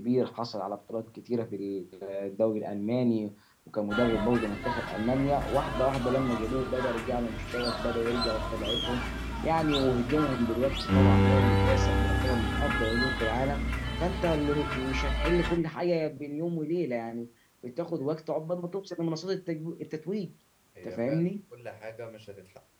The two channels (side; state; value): both; identical; correlation 1.00